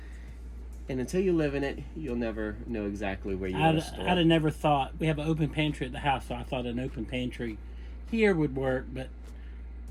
And until you live in it, you'll never know exactly where you want to store. I'd have never thought. We have an open pantry at the house, so I thought an open pantry here would work. But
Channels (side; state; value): both; identical; correlation 1.00